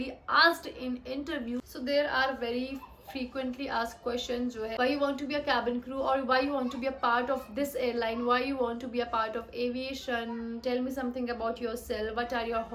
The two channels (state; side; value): identical; both; correlation 1.00